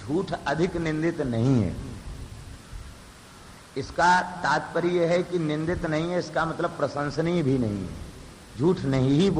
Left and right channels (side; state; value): both; identical; correlation 1.00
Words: अधिक निंदित नहीं है। इसका तात्पर्य है कि निंदित नहीं है, इसका मतलब प्रशंसनीय भी नहीं है। झूठ नहीं ही